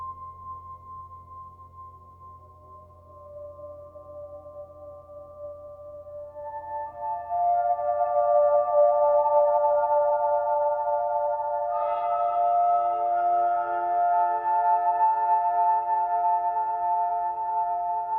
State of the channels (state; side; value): identical; both; correlation 1.00